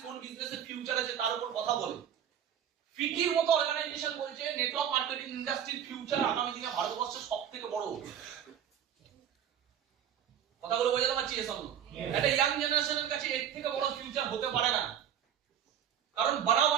কোন বিজনেসের ফিউচার আছে তার উপর কথা বলে। ফিকির মতো অর্গানাইজেশন বলছে নেটওয়ার্ক মার্কেটিং ইন্ডাস্ট্রির ফিউচার আগামী দিনে ভারতবর্ষের সবথেকে বড়। কথাগুলো বোঝাতে পারছি? একটা ইয়াং জেনারেশনের কাছে এর থেকে বড় ফিউচার হতে পারে না, কারণ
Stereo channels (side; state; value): left; quieter; 9.3 dB